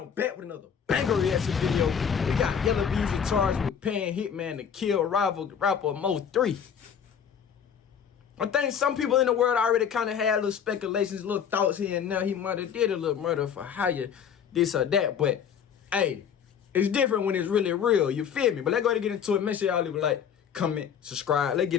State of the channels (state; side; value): quieter; right; 7.8 dB